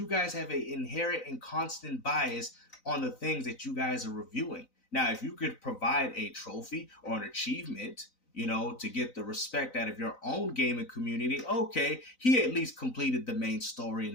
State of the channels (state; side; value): late; right; 3.9 ms